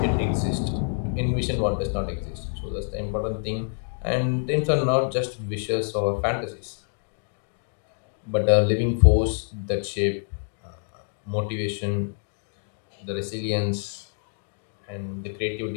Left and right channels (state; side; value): silent; right; digital silence